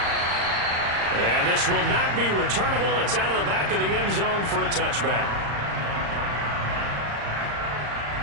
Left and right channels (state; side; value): late; left; 35 ms